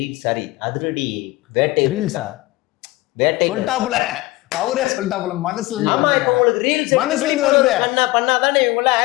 சாரி அதிரடி வேட்டை ரீல்ஸா? வேட்டை சொல்லிட்டாப்புல, அவரே சொல்லிட்டாப்புல. மனசுல இருந்து உங்களுக்கு ரீல்ஸ் மனசுல இருந்து வருது. பண்ணாதானே இவங்க எல்லாம்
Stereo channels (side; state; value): right; quieter; 19.9 dB